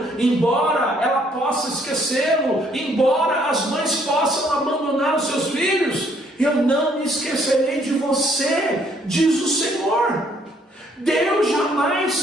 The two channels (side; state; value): both; normal; correlation 0.66